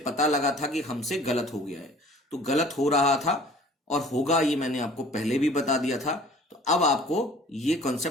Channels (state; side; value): normal; both; correlation 0.49